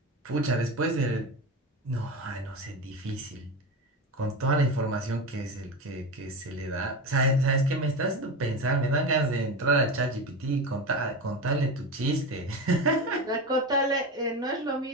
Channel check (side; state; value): both; normal; correlation 0.22